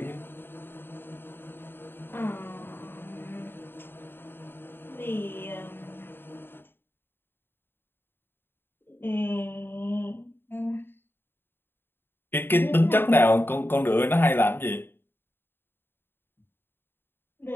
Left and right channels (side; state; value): right; late; 0.10 ms